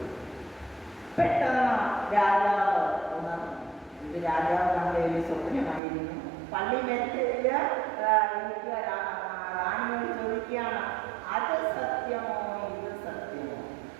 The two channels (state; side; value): drops out; left; at 5.8 s